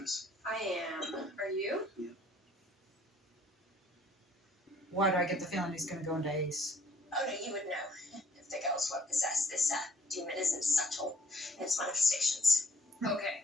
I am. Are you? Why do I get the feeling he's going to go into Ace? Oh no, you would know if the girls were possessed. This demon isn't subtle in its manifestations. Okay,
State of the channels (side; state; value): both; normal; correlation 0.61